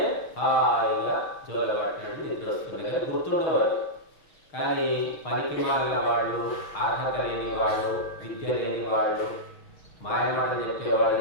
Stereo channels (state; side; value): late; right; 6.5 ms